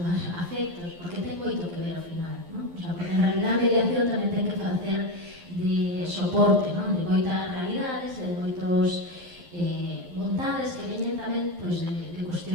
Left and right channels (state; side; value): late; left; 11 ms